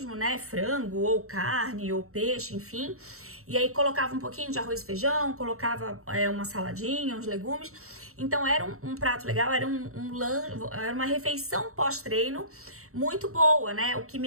né? Frango, ou carne, ou peixe, enfim. E aí colocava um pouquinho de arroz e feijão, colocava uma saladinha, uns legumes. Então era um prato legal, era era uma refeição pós-treino muito boa, né? O que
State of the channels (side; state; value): left; late; 0.63 ms